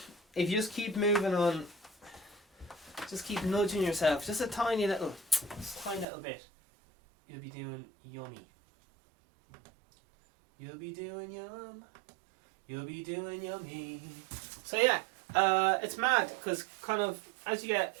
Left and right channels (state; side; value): drops out; left; at 6.1 s